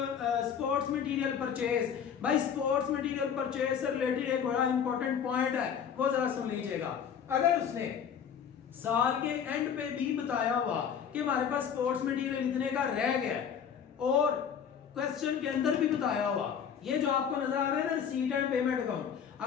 मटेरियल परचेज। भाई स्पोर्ट्स मटेरियल परचेज से रिलेटेड एक बड़ा इंपॉर्टेंट पॉइंट है, वो जरा सुन लीजिएगा। अगर उसने साल के एंड पे भी बताया हुआ कि हमारे पास स्पोर्ट्स मटेरियल इतने का रह गया, और क्वेश्चन के अंदर भी बताया हुआ, ये जो आपको नजर आ रहा है ना रिसीट एंड पेमेंट अकाउंट,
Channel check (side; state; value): right; quieter; 7.8 dB